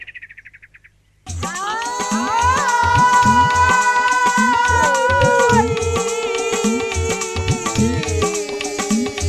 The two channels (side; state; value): both; identical; correlation 1.00